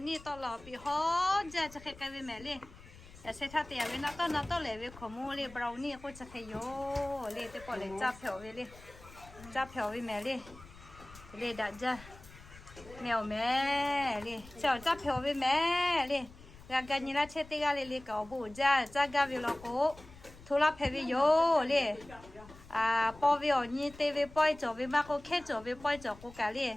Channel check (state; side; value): noise; left; rumble, 20 dB below the sound